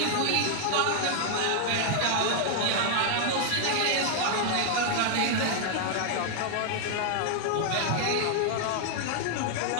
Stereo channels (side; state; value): both; different; correlation 0.00